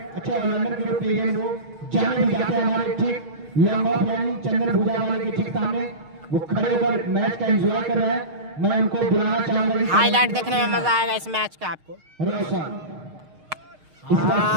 अच्छे ऑलराउंडर के रूप में वो जाने भी जाते हैं हमारे ठीक लंग ऑफ यानी चंदन भूजा वाले के ठीक सामने, वो खड़े होकर मैच का एंजॉय कर रहे हैं। मैं उनको बुलाना चाहूंगा, हाईलाइट देखने में मजा आएगा इस मैच का आपको।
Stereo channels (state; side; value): late; left; 6.5 ms